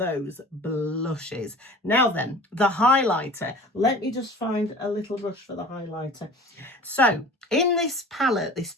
blushes. Now then, the highlighter. Let me just find a little brush for the highlighter. So in this palette, this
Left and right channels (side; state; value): both; normal; correlation 0.41